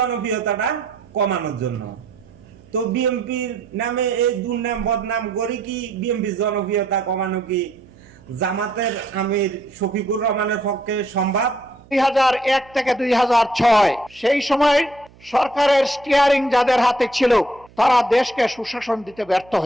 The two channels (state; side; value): noise; right; hum, 26 dB below the sound